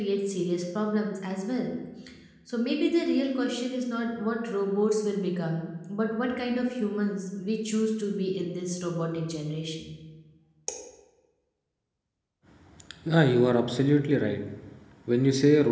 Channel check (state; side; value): identical; both; correlation 1.00